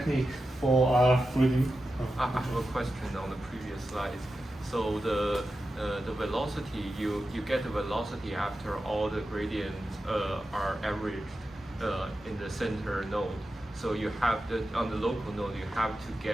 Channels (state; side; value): normal; both; correlation 0.91